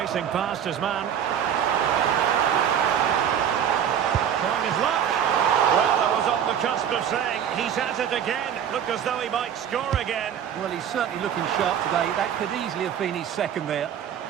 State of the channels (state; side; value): quieter; left; 8.9 dB